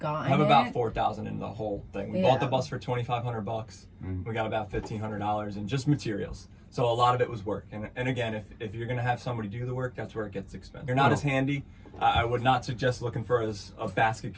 I have it. about 4,000 in the whole thing. We Yeah. bought the bus for $2,500. We got about $1,500 in just materials. So a lot of it was work. And again, if you're gonna have somebody do the work, that's where it gets expensive. You're not as handy. I would not suggest looking for a basket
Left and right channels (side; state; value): both; identical; correlation 1.00